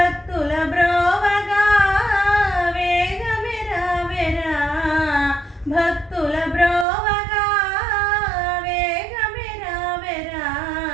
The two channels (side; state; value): left; drops out; at 6.9 s